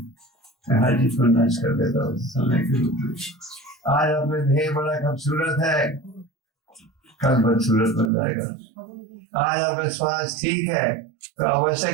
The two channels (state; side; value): drops out; left; at 8.1 s